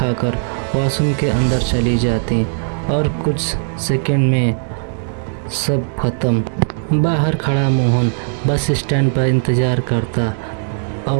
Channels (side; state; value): left; silent; digital silence